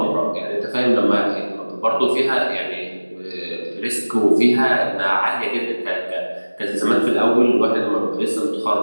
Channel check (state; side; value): inverted; both; correlation -1.00